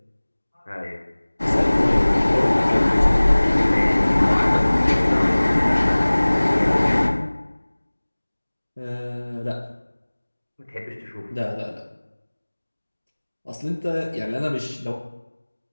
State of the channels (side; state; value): both; inverted; correlation -1.00